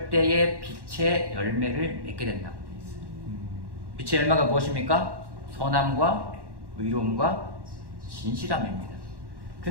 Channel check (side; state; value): left; late; 1.1 ms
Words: 때에 빛의 열매를 맺게 된다고 되어 있어요. 빛의 열매가 무엇입니까? 선함과 의로움과 진실함입니다.